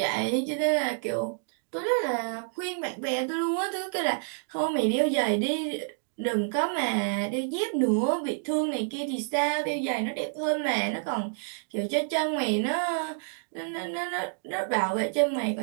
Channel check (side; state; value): left; silent; digital silence